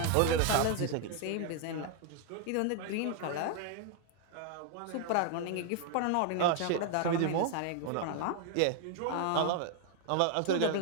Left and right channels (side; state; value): both; different; correlation 0.00